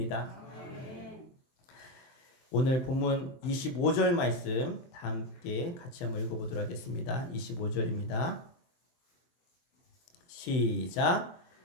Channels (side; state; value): right; late; 23 ms